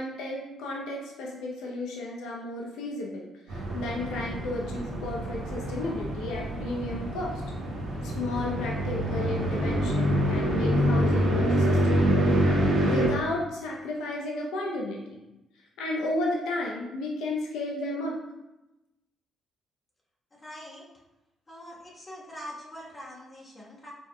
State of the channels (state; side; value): normal; both; correlation 0.71